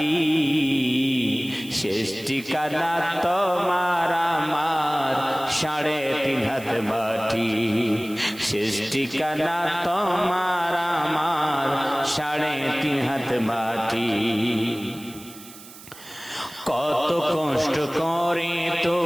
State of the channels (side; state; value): right; noise; hiss, 18 dB below the sound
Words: শেষ ঠিকানা তোমার আমার 3.5 হাত মাটি। শেষ ঠিকানা তোমার আমার 3.5 হাত মাটি। কত কষ্ট করে